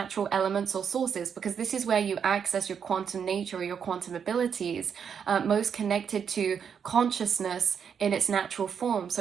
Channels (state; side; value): quieter; left; 7.2 dB